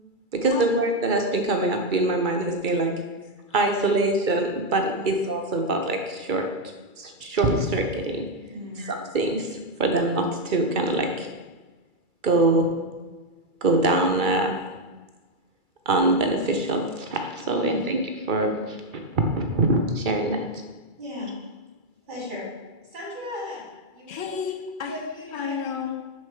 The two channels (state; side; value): late; left; 2.3 ms